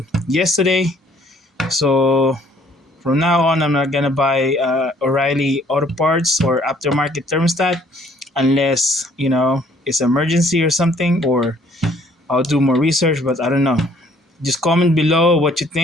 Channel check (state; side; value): normal; both; correlation 0.60